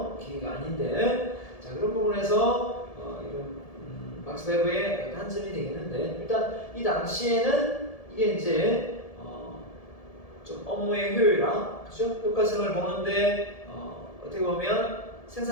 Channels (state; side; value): late; right; 1.7 ms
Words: 기계가 아닌데 자 그런 부분에서 이런 막스 베버의 단점이 되겠는데 일단 이 당시에는 이게 이제 좀 업무의 효율화, 그죠? 효과성을 보는데 어떻게 보면